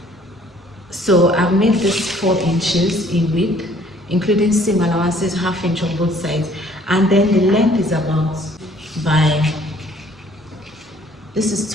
So I've made this 4 inches in width, including seam allowances, 1/2 inch on both sides. And then the length is about this is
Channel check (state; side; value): normal; both; correlation 0.59